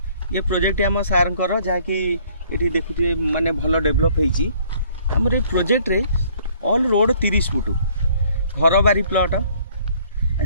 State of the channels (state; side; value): inverted; both; correlation -0.60